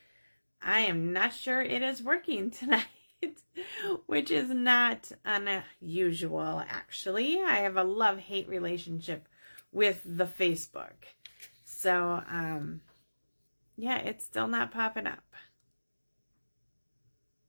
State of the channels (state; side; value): inverted; both; correlation -1.00